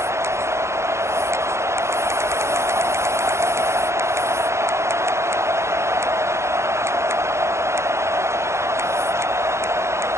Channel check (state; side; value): late; left; 0.13 ms